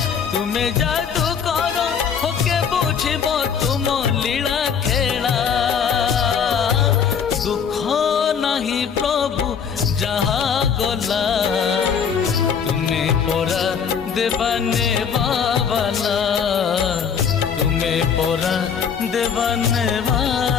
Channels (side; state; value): right; quieter; 7.0 dB